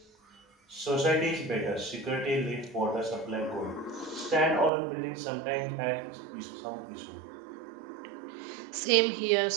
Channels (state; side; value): drops out; left; at 4.7 s